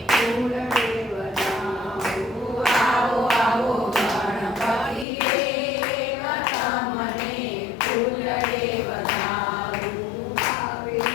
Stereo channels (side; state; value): right; drops out; at 5.1 s